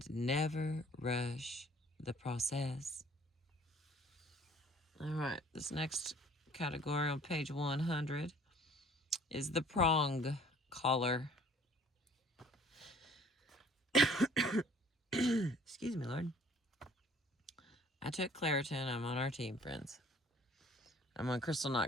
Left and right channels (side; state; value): both; normal; correlation 0.54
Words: never rush the process. All right, this next category on page 100 is the prong collar. Excuse me, Lord. I took Claritin. I'm on our team, friends. I'm on Crystal